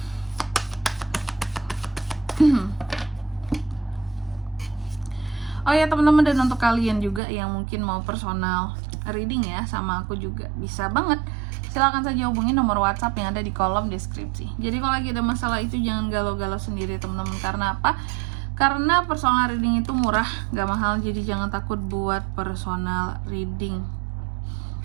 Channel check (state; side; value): drops out; left; at 7.2 s